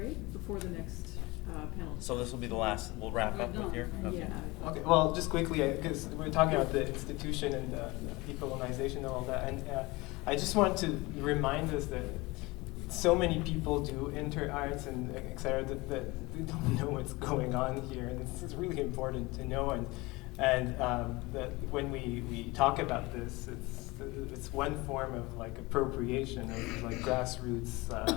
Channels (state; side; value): quieter; right; 22.9 dB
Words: before the next panel. So this will be the last, we'll wrap up with here? Okay. Yeah. Okay, well, just quickly, because we're talking about the institution and the decolonization and all that, and I just want to remind us that so many people do inter-arts and et cetera that they don't know what's going on here, and it's really important to know, and that when we talk about this, it's one form of like appropriation of like grassroots